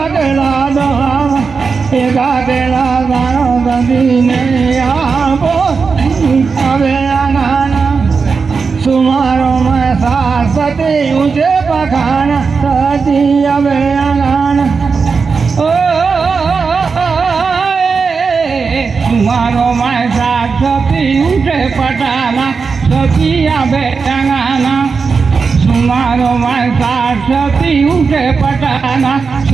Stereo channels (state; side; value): quieter; left; 5.0 dB